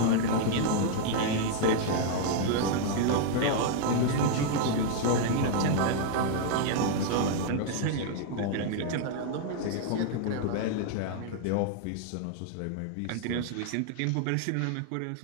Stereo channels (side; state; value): both; different; correlation -0.01